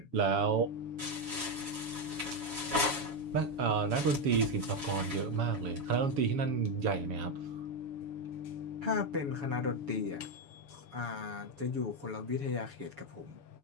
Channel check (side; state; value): left; late; 7.1 ms